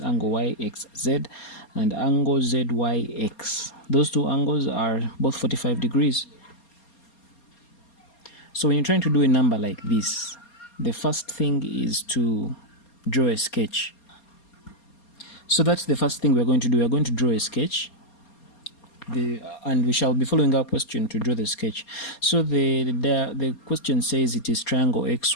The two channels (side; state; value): right; late; 4.3 ms